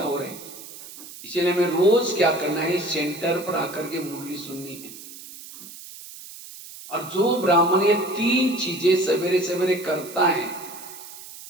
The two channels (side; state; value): right; noise; hiss, 15 dB below the sound